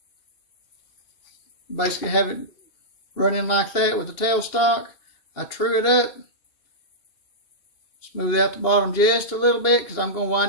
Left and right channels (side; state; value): right; late; 2.8 ms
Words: Basically have it running like that with the tailstock. I true it up. Smooth out the bottom just a little bit because I'm going to